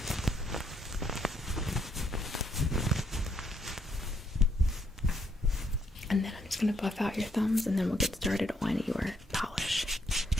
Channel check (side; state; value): both; normal; correlation 0.72